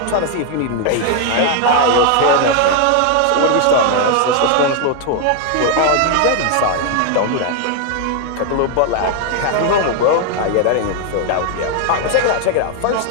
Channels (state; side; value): different; both; correlation 0.00